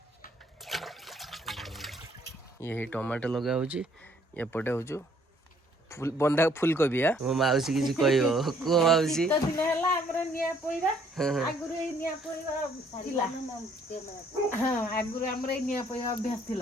ये टमाटो लगा होची एपटे होचु फुल बंधा फुलकोबी आ मो माउसी किसी कहइबो को माउसी तो दिन हला हमरो निया पोइबा आगुरु ए निया पोइबा थिला हां आगुरु हमरो ए निया पोइबा अभ्यास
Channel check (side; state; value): both; normal; correlation 0.64